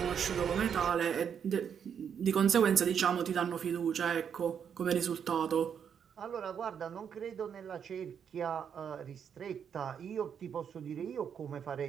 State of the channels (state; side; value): quieter; left; 7.8 dB